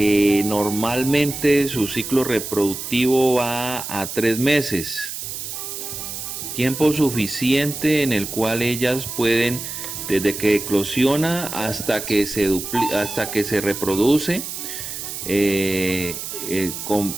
normalmente su ciclo reproductivo va a 3 meses. Tiempo suficiente en el cual ellas pueden, desde que eclosiona hasta que se reproduce,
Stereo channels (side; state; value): right; noise; hiss, 7 dB below the sound